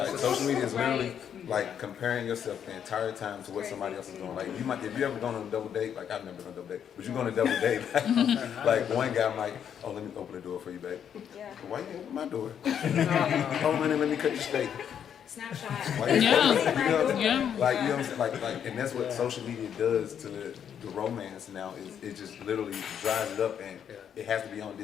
social media is literally like comparing yourself the entire time to what somebody else is doing. Like you might, if you ever gone on a double date, like I've never been on a double date, but you go on a double date, like one guy might, oh let me open the door for you, babe. yeah. Why you open my door? Oh honey, let me cut your steak. Snapshot. Why you Yeah. you know what I'm saying? Yeah. Like you know what I'm saying? Like and that's what social media does to the romance now is it just literally drives it up and it has to be on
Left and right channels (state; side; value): quieter; right; 8.6 dB